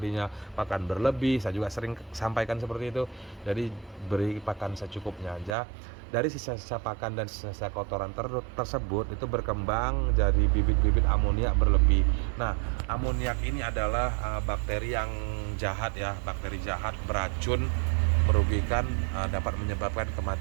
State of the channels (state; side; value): drops out; left; at 5.6 s